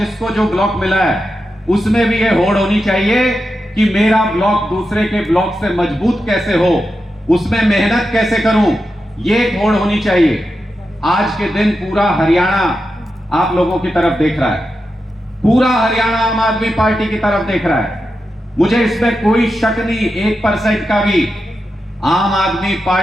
जो ब्लॉक मिला है उसमें भी ये होड़ होनी चाहिए कि मेरा ब्लॉक दूसरे के ब्लॉक से मजबूत कैसे हो, उसमें मेहनत कैसे करूं, ये एक होड़ होनी चाहिए। आज के दिन पूरा हरियाणा आप लोगों की तरफ देख रहा है, पूरा हरियाणा आम आदमी पार्टी की तरफ देख रहा है। मुझे इसमें कोई शक नहीं, 1% का भी। आम आदमी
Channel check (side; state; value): both; normal; correlation 0.89